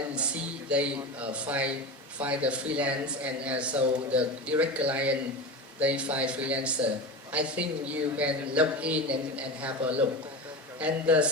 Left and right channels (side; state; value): both; normal; correlation 0.26